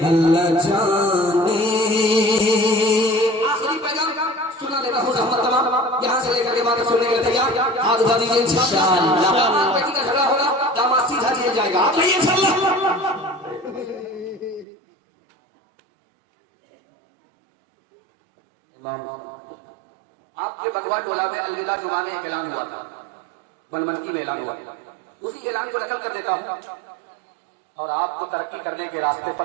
اللہ جانے آخری پیغام سنا دیتا ہوں زحمت تمام یہاں سے لے کر کے بات سننے کے لیے تیار ہاتھ اٹھا دیجیے انشاءاللہ داماد بیٹی کا جھگڑا ہوگا داماد سیدھا جیل جائے گا ہاتھ لائیے انشاءاللہ آپ کے بگوا ٹولہ میں الوداع جمعہ میں ایک اعلان ہوا تھا بلمنکی میں اعلان ہوا اسی اعلان کو نقل کر دیتا ہوں اور آپ کو ترقی کرنے کے راستے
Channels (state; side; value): drops out; left; at 14.7 s